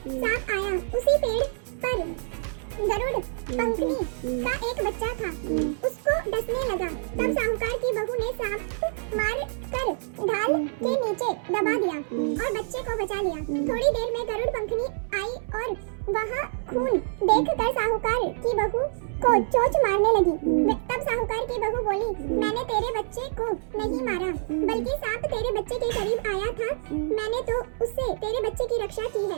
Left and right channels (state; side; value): silent; left; 60 dB below the other